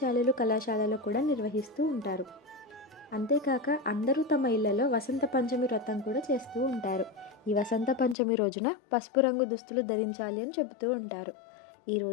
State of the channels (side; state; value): right; drops out; at 8.2 s